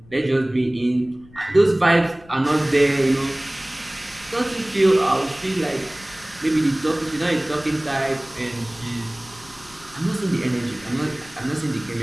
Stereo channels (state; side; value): noise; left; rumble, 24 dB below the sound